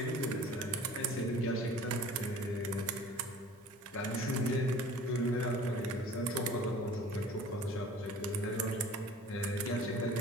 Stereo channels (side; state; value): both; normal; correlation 0.46